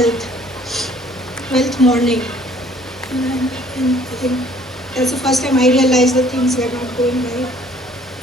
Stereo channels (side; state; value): both; normal; correlation 0.57